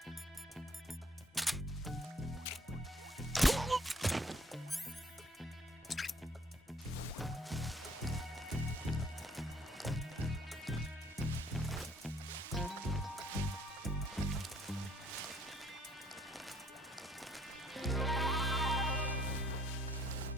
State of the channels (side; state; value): both; normal; correlation 0.63